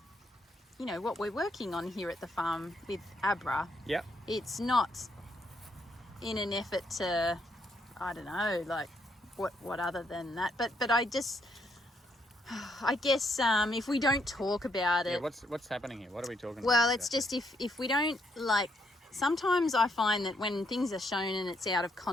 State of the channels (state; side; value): normal; both; correlation 0.75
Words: you know, what we're working on here at the farm with Abra. Yep. It's not in an effort to, I don't know, like what other than that. But I just, I guess if we don't talk about it. Yeah, what's happening here? What are we talking about? Well, it's just if we don't, like, sometimes I find that when things are shown and it's out of